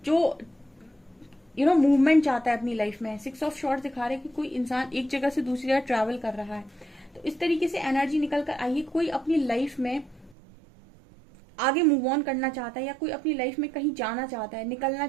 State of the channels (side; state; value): left; drops out; at 10.4 s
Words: जो मूवमेंट चाहता है अपनी लाइफ में। 6 ऑफ शॉर्ट्स दिखा रहे हैं कि कोई इंसान एक जगह से दूसरी जगह ट्रैवल कर रहा है। तो इस तरीके से एनर्जी निकल कर आई है, कोई अपनी लाइफ में आगे मूव ऑन करना चाहता है या कोई अपनी लाइफ में कहीं जाना चाहता है, निकलना